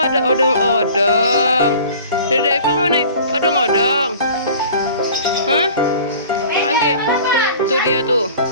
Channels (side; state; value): both; inverted; correlation -0.45